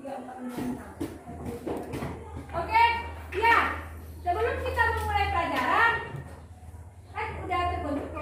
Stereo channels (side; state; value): both; identical; correlation 1.00